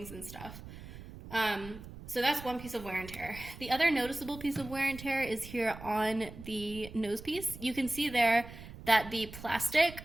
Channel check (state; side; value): noise; right; rumble, 14 dB below the sound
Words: and stuff. So that's one piece of wear and tear. The other noticeable piece of wear and tear is here on the nose piece. You can see there that the plastic